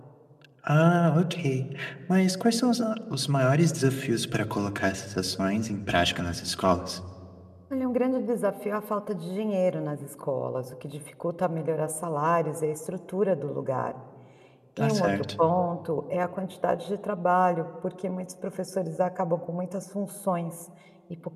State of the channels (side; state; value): both; identical; correlation 1.00